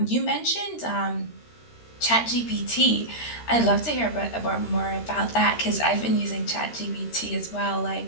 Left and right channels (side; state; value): right; late; 13 ms